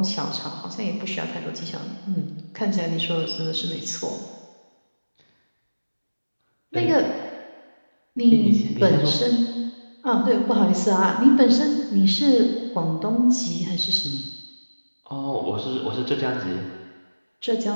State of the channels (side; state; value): both; inverted; correlation -1.00